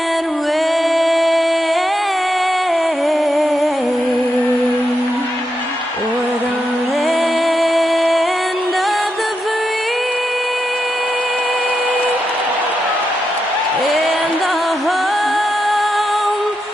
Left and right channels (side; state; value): both; normal; correlation 0.85